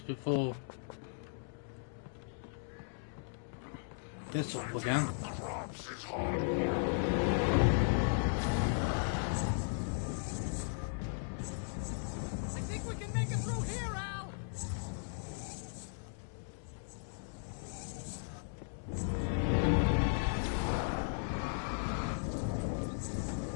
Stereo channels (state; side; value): silent; right; digital silence